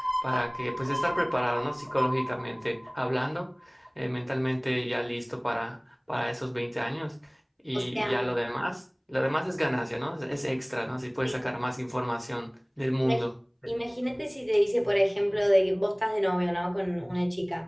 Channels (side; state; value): both; identical; correlation 1.00